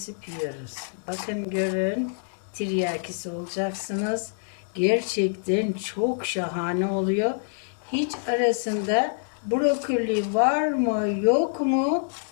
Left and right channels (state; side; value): silent; right; digital silence